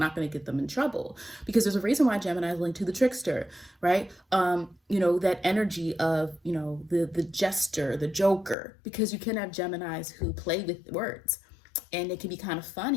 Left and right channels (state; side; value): drops out; right; at 8.6 s